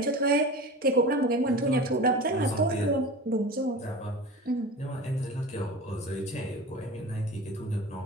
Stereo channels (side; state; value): both; normal; correlation 0.33